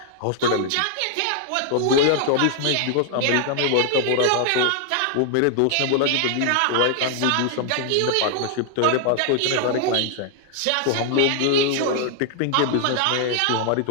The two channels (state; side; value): different; both; correlation 0.00